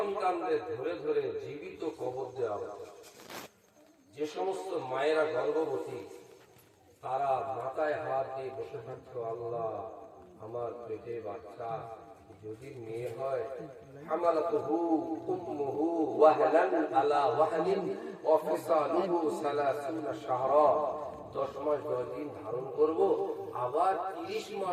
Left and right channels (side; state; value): both; identical; correlation 1.00